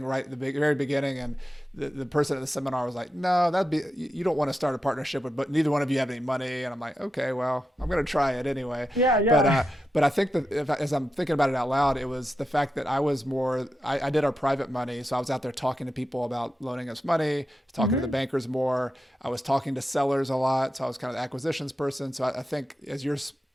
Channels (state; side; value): normal; both; correlation 0.88